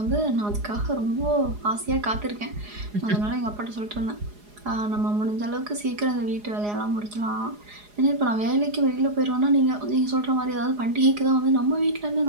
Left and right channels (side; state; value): left; late; 4.8 ms